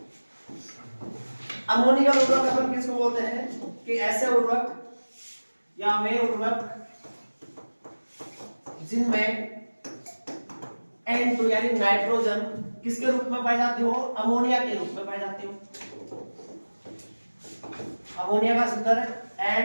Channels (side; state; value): both; inverted; correlation -1.00